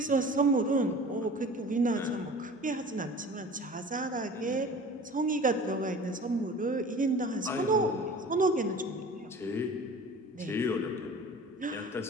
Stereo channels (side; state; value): both; normal; correlation 0.41